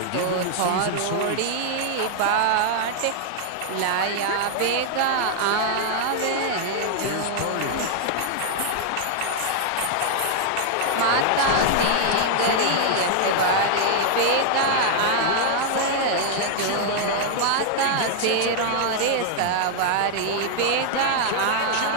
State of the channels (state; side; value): different; both; correlation -0.01